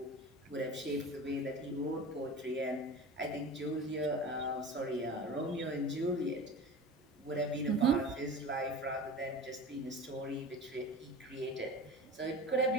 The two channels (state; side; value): normal; both; correlation 0.34